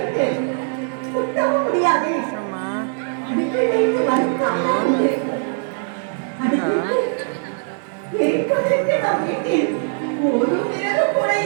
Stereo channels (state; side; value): silent; left; 65 dB below the other